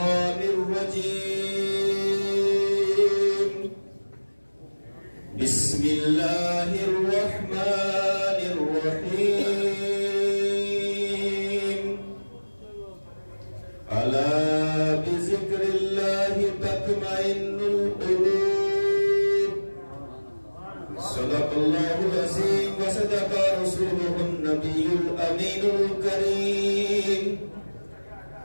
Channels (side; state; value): both; inverted; correlation -1.00